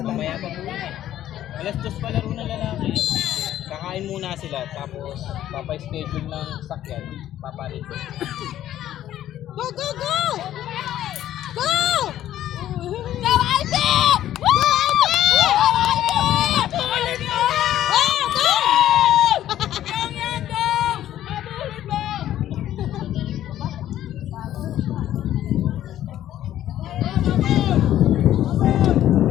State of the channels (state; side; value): quieter; right; 12.3 dB